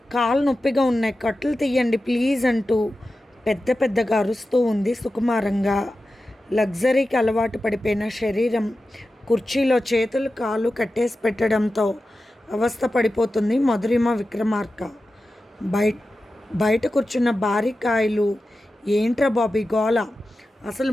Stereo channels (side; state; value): both; normal; correlation 0.93